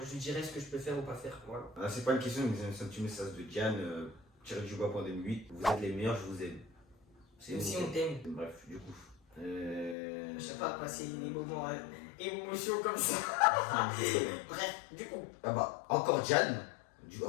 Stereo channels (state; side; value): drops out; right; at 10.0 s